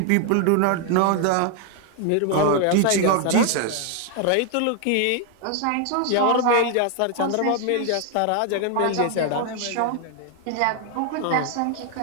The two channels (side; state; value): both; different; correlation 0.00